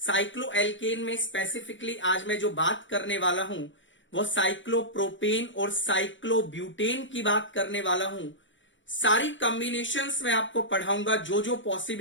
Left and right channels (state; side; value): late; right; 0.55 ms